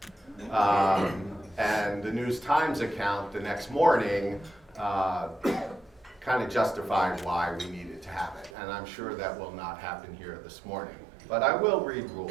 And the News Times account the next morning kind of justified why we needed to have it. And I'm sure that will not happen here this morning. But I will read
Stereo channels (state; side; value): drops out; left; at 8.5 s